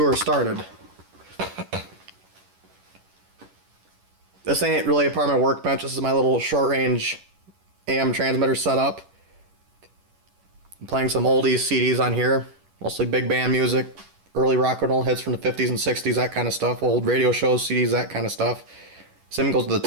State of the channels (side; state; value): left; late; 10 ms